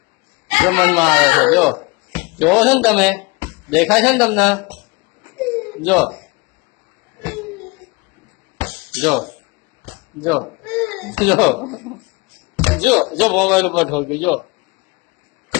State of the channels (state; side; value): quieter; right; 26.5 dB